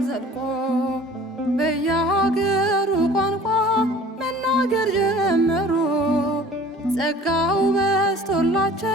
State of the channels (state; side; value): normal; both; correlation 0.47